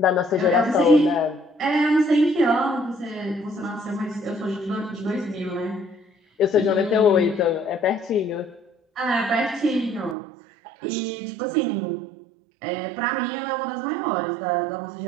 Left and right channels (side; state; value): left; drops out; at 10.2 s